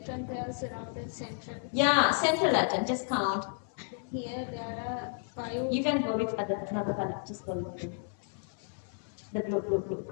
pairs around the central. Yeah, central atom, just count. Here there are 5. You can go with another color, just go with blue. The blue,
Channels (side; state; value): right; silent; 56 dB below the other